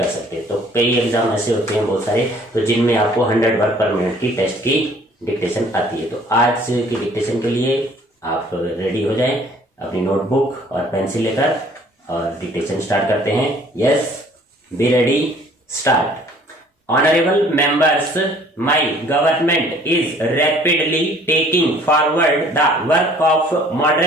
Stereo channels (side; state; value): both; normal; correlation 0.56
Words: सकते हैं। तो कई एग्जाम ऐसे होते हैं बहुत सारे तो जिनमें आपको 100 वर्ड पर मिनट की टेस्ट की डिक्टेशन आती है। तो आज की डिक्टेशन के लिए आप रेडी हो जाएं अपनी नोटबुक और पेंसिल लेकर और डिक्टेशन स्टार्ट करते हैं। Yes, be ready, start. Honorable members, my government is rapidly taking forward the work of